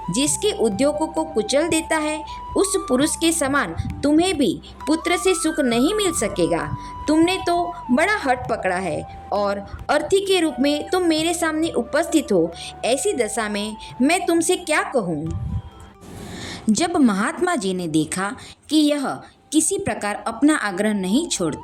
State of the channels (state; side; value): identical; both; correlation 1.00